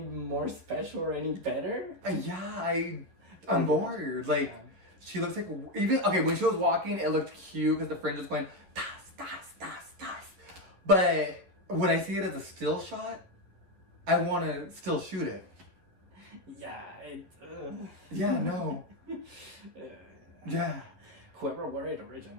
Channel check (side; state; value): left; late; 11 ms